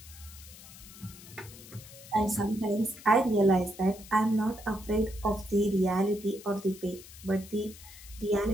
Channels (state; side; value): noise; left; hiss, 18 dB below the sound